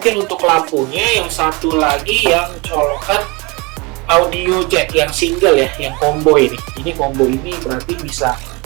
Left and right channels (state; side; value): quieter; left; 27.3 dB